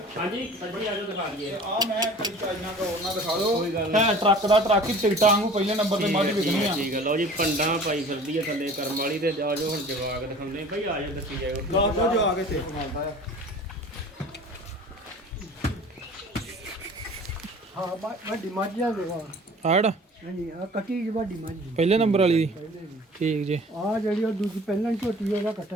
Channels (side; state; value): both; normal; correlation 0.45